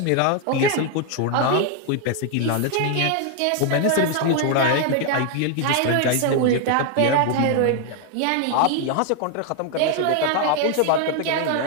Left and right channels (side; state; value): both; different; correlation 0.00